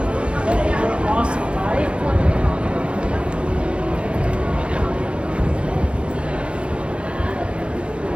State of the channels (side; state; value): left; late; 0.058 ms